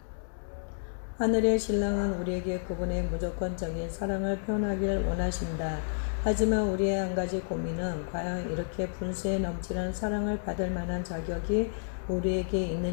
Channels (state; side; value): silent; right; digital silence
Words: 하늘의 신랑은 우리에게 그분의 무조건적인 사랑을 표현하기를 원하신다. 하지만 우리의 한 가지 고민은 과연 이렇게 분수에 넘치는 사랑을 받을 만한 자격이 우리에게